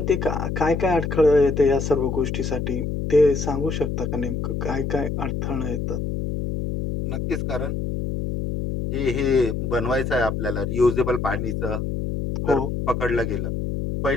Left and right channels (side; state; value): left; noise; hum, 2 dB below the sound